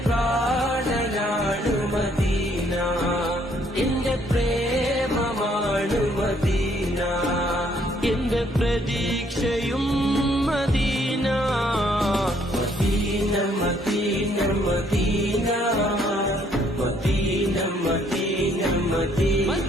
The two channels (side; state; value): both; normal; correlation 0.66